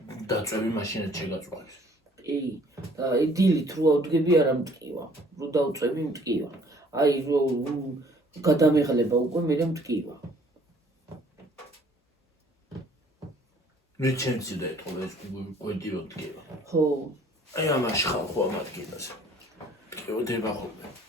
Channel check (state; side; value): normal; both; correlation 0.57